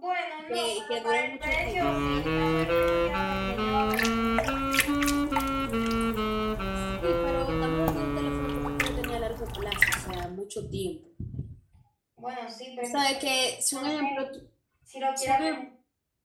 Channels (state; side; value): identical; both; correlation 1.00